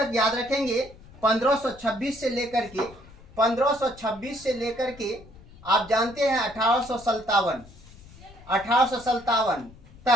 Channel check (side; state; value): left; noise; rumble, 21 dB below the sound